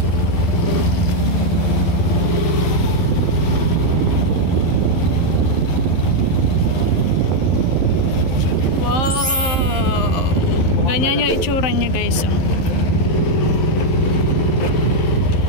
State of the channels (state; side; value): late; right; 11 ms